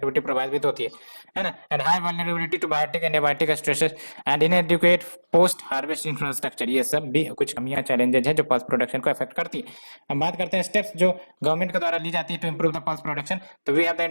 प्रभावित होती है ना। And high vulnerability to biotic and abiotic stresses and inadequate post harvest infrastructure, ये सब भी कुछ कमियां चैलेंजेस है जो पल्स प्रोडक्शन को अफेक्ट करती है। हम बात करते हैं स्टेप्स जो गवर्नमेंट के द्वारा ली जाती है to improve the pulse production. तो we have the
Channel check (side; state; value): both; inverted; correlation -1.00